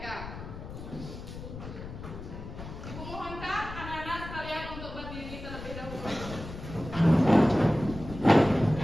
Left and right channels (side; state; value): left; noise; rumble, 11 dB below the sound